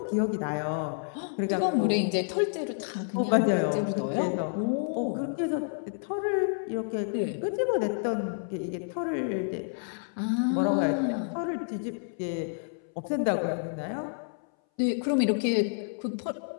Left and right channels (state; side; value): silent; right; 58 dB below the other